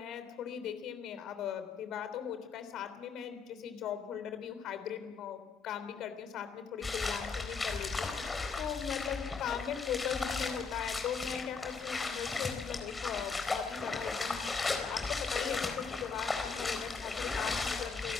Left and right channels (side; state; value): right; quieter; 5.1 dB